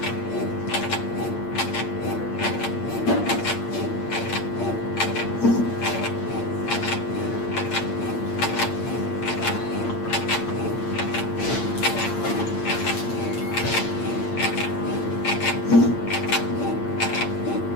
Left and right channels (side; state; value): right; late; 8.7 ms